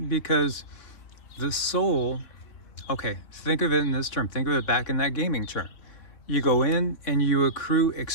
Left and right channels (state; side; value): late; right; 3.6 ms